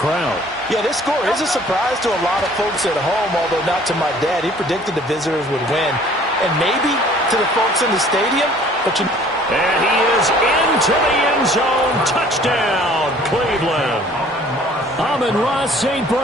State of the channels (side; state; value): both; normal; correlation 0.54